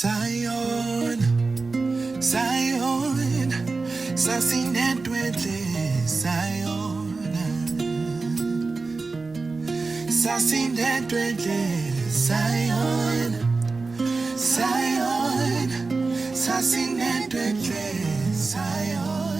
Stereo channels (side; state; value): left; quieter; 3.9 dB